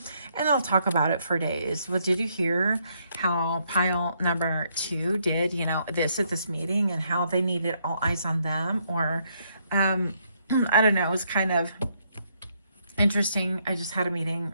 And they'll talk about it for days. Well, did you hear how pile number 2 did, you know, this at this meeting and how they needed all eyes on them? Or, I don't know, it was kind of interesting. I just had a meeting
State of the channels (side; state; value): both; inverted; correlation -0.73